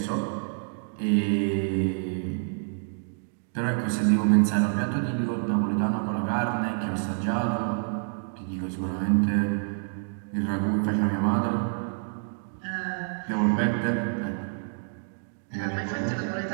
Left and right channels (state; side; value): silent; left; 60 dB below the other